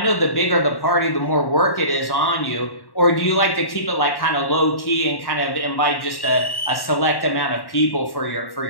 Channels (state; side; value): late; right; 1.1 ms